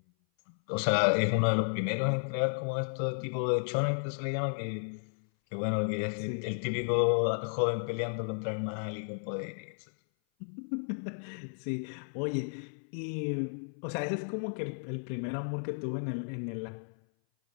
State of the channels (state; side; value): silent; right; 56 dB below the other